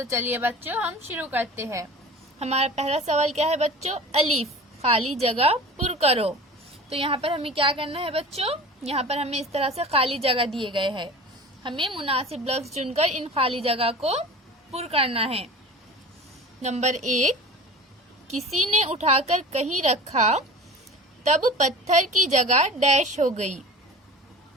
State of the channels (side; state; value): both; normal; correlation 0.37